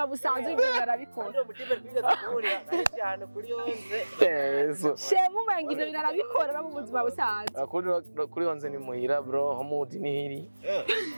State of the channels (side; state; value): both; inverted; correlation -1.00